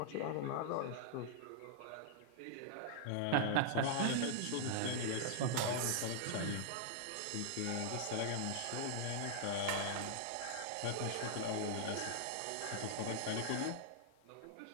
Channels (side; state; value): both; different; correlation -0.01